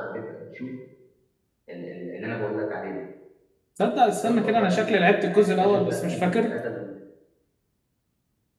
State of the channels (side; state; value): both; identical; correlation 1.00